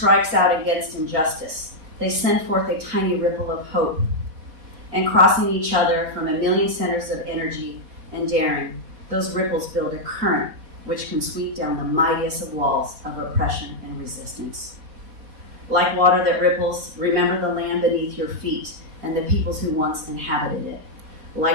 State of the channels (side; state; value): left; late; 4.3 ms